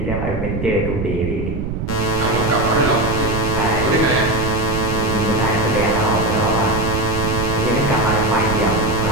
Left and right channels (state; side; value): noise; right; rumble, 4 dB below the sound